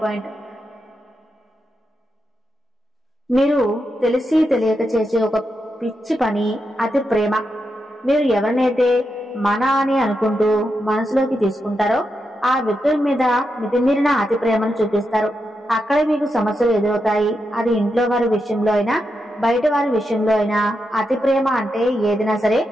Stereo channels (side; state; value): both; normal; correlation 0.86